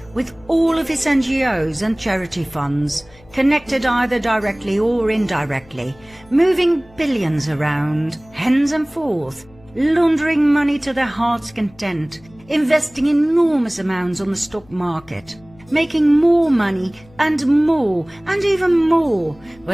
with all of its NGOs and charity funds, connected either directly or indirectly, moving billions around, hens and forth, laundering money to their heart's content, investing enormous amounts on the stock market, making more money and even more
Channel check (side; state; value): left; noise; hum, 26 dB below the sound